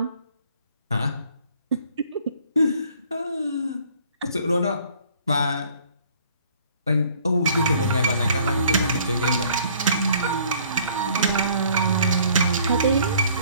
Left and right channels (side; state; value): both; inverted; correlation -0.57